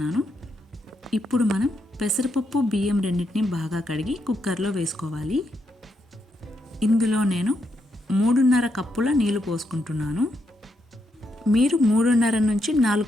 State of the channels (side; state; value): both; normal; correlation 0.80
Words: ఇప్పుడు మనం పెసరపప్పు బియ్యం రెండింటిని బాగా కడిగి కుక్కర్లో వేసుకోవాలి. ఇందులో నేను 3.5 కప్పుల నీళ్లు పోసుకుంటున్నాను. మీరు 3.5 నుంచి 4